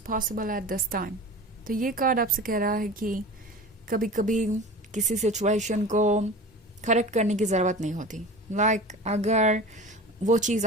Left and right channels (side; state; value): both; normal; correlation 0.35